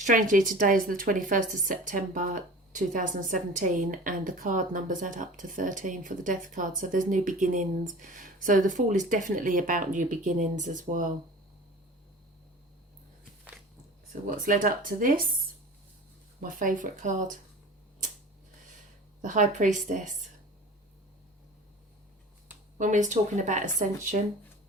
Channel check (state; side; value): normal; both; correlation 0.39